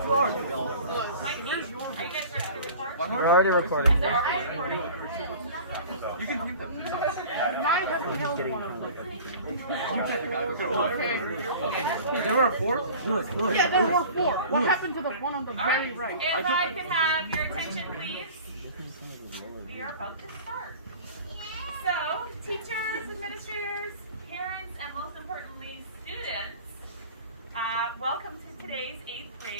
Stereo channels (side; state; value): both; inverted; correlation -0.42